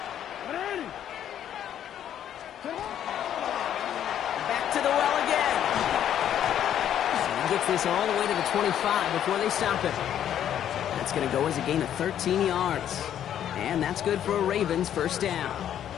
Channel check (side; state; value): right; quieter; 10.3 dB